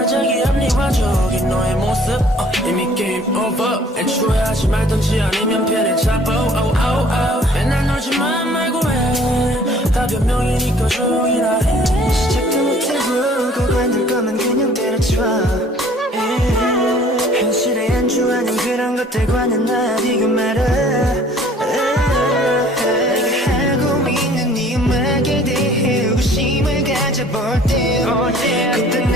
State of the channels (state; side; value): normal; both; correlation 0.54